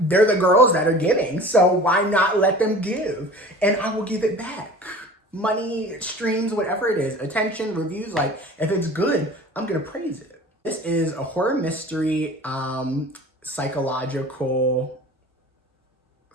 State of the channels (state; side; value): normal; both; correlation 0.41